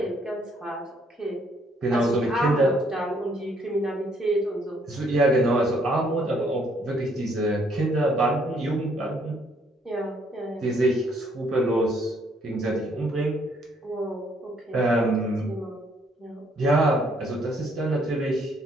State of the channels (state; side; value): normal; both; correlation 0.67